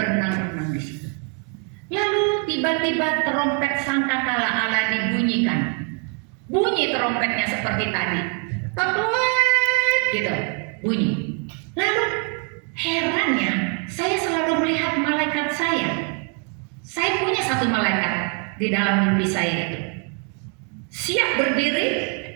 di situ. Lalu tiba-tiba trompet sangkakala Allah dibunyikan. Bunyi trompetnya seperti tadi, ketuet gitu, bunyi. Lalu herannya, saya selalu melihat malaikat saya. Saya punya satu malaikat di dalam mimpi saya itu. Siap berdiri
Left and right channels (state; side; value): quieter; left; 36.2 dB